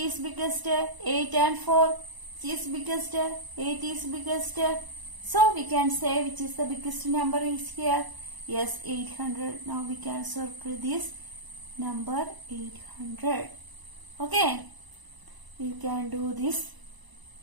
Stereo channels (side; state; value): left; late; 1.0 ms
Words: biggest. 8 and 4. Which is biggest? 8 is biggest. So we can say which is the biggest number is here. Yes, 800. Now we can circle this number 800. Okay. We can do this.